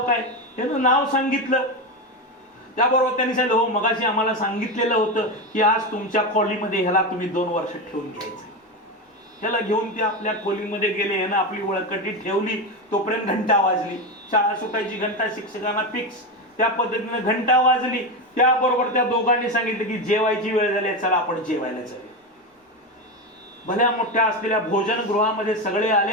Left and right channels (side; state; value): both; normal; correlation 0.16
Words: काय? त्यानं नाव सांगितलं. त्याबरोबर त्यांनी सांगितलं हो मगाशी आम्हाला सांगितलेलं होतं की आज तुमच्या खोलीमध्ये ह्याला तुम्ही 2 वर्ष ठेवून घ्यायचं. ह्याला घेऊन ते आपल्या खोलीमध्ये गेले. ह्यानं आपली वळकटी ठेवली. तोपर्यंत घंटा वाजली. शाळा सुटायची घंटा शिक्षकांना फिक्स. त्या पद्धतीने घंटा वाजली. त्याबरोबर त्या दोघांनी सांगितलं की जेवायची वेळ झाली, चला आपण जेवायला जाऊया. भल्या मोठ्या असलेल्या भोजनगृहामध्ये सगळे